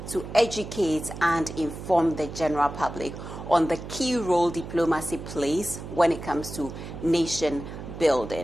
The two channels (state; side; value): noise; right; hum, 10 dB below the sound